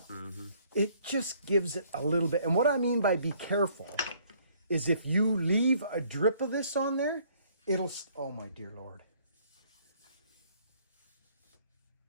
Mm-hmm. It just gives it a little bit. And what I mean by be careful is if you leave a drip of this on there, it'll, oh my dear Lord.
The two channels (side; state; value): both; inverted; correlation -0.62